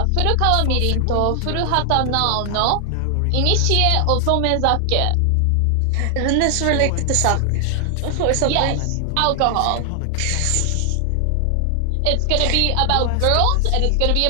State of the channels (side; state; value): both; different; correlation 0.00